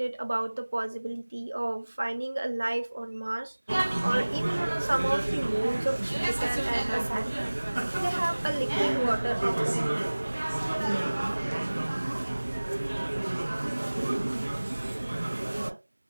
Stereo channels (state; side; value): inverted; both; correlation -1.00